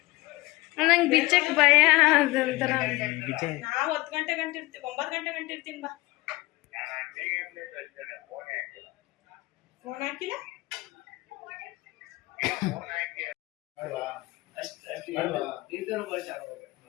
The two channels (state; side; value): quieter; right; 20.7 dB